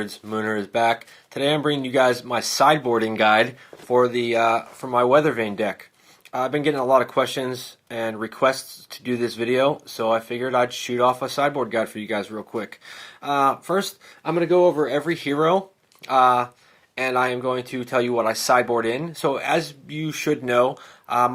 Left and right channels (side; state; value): both; identical; correlation 1.00